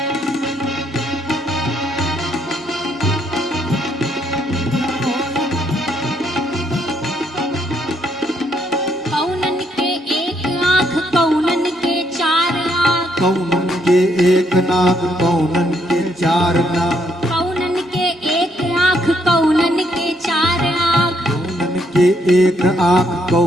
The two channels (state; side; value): normal; both; correlation 0.73